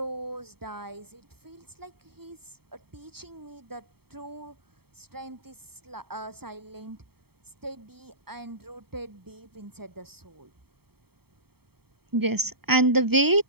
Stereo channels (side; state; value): left; late; 0.96 ms